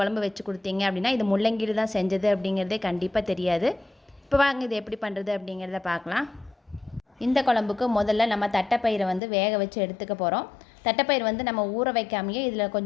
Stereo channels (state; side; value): drops out; right; at 9.2 s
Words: வச்சு கொடுத்தீங்க அப்படின்னா இது முள்ளங்கியில் தான் செஞ்சது அப்படிங்கிறதே கண்டிப்பாக தெரியாது. இப்போ வாங்க இது எப்படி பண்ணுறது அப்படிங்கிறத பார்க்கலாம். இந்த குழம்புக்கு முதல்ல நம்ம தட்டைப்பயிரை வேக வச்சு எடுத்துக்க போகிறோம். தட்டைப்பயிர் நம்ம ஊற வைக்காமையே இதில்